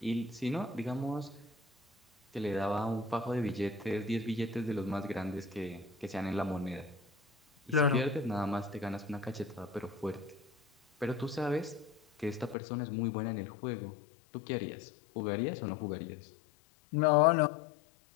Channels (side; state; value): right; drops out; at 12.6 s